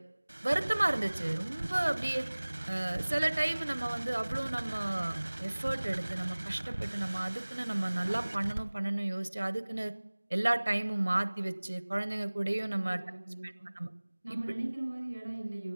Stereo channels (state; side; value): inverted; both; correlation -1.00